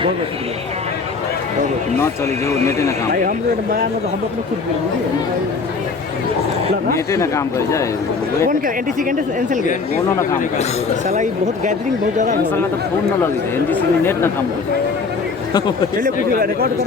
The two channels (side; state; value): right; quieter; 4.6 dB